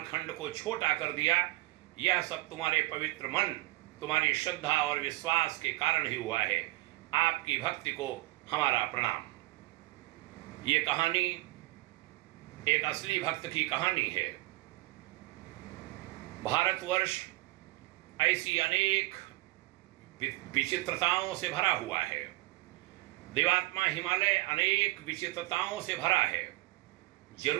को छोटा कर दिया। यह सब तुम्हारे पवित्र मन, तुम्हारी श्रद्धा और विश्वास के कारण ही हुआ है। आपकी भक्ति को हमारा प्रणाम। ये कहानी एक असली भक्त की कहानी है। भारतवर्ष ऐसी अनेक विचित्रताओं से भरा हुआ है। देवात्मा हिमालय अनेक विचित्रताओं से भरा है।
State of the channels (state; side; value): quieter; left; 20.3 dB